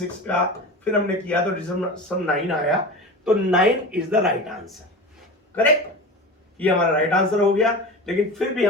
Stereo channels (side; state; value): both; normal; correlation 0.31